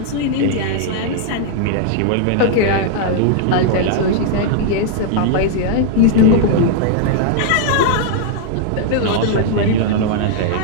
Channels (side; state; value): both; different; correlation 0.00